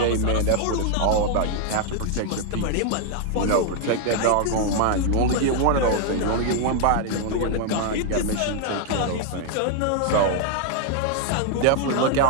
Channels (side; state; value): both; different; correlation 0.00